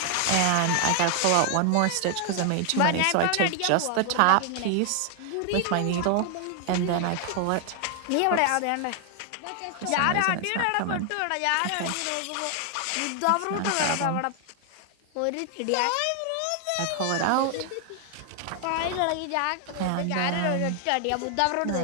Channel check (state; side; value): different; both; correlation 0.00